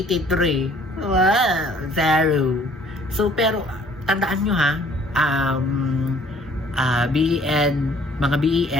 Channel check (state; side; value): normal; both; correlation 0.57